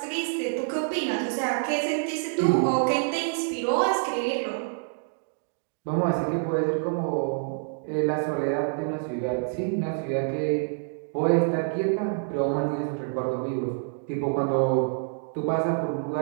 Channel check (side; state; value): left; silent; digital silence